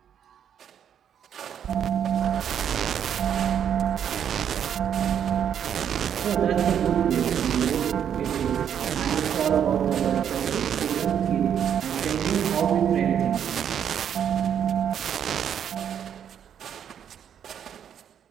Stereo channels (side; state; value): left; quieter; 8.9 dB